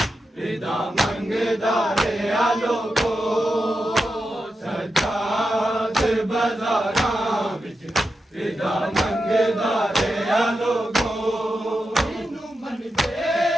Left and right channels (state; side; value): normal; both; correlation 0.88